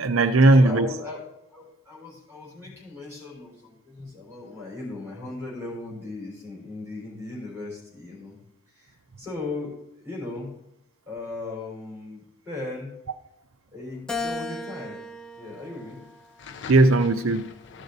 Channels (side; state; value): both; normal; correlation 0.63